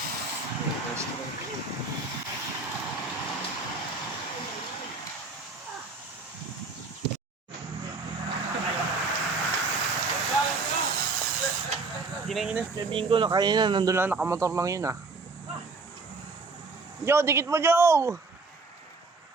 Ginanginas na bingo na kanina, nandun lang nakamotor lang yun ah. Joe, dikit mo Joe!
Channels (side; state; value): left; quieter; 3.8 dB